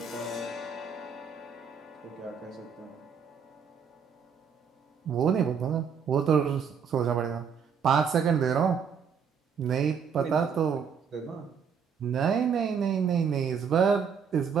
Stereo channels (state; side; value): quieter; left; 6.7 dB